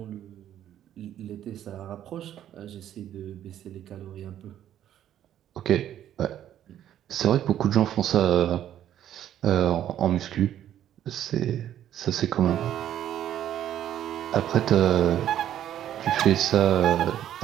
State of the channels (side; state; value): left; quieter; 11.2 dB